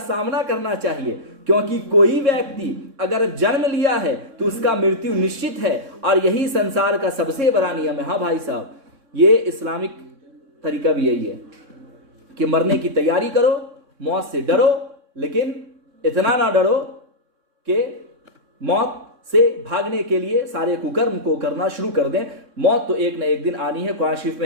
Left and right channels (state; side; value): late; left; 3.6 ms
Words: सामना करना चाहिए, क्योंकि कोई व्यक्ति अगर जन्म लिया है तो उसका मृत्यु निश्चित है, और यही संसार का सबसे बड़ा नियम है। हाँ भाई साहब, ये इस्लामिक तरीका भी यही है कि मरने की तैयारी करो, मौत से डरो, लेकिन इतना ना डरो कि मौत से भागने के लिए सारे कुकर्म को करना शुरू कर दें। मौत तो एक न एक दिन आनी है। कुरान शरीफ